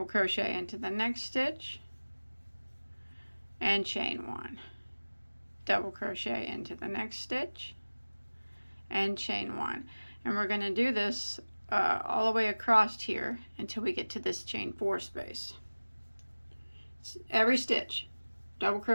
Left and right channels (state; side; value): inverted; both; correlation -1.00